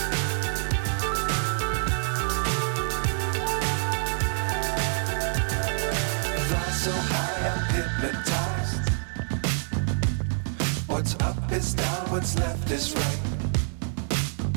Fly so high, I'm hypnotized. What's up is down, what's left is right.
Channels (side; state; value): left; silent; digital silence